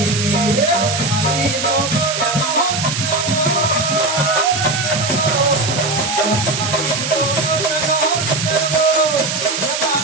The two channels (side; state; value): right; noise; hiss, 3 dB below the sound